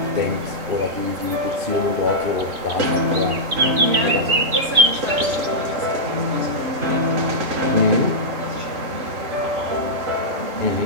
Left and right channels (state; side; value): late; left; 3.2 ms